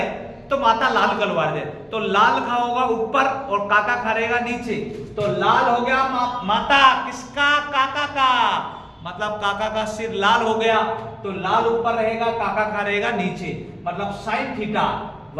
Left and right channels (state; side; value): identical; both; correlation 1.00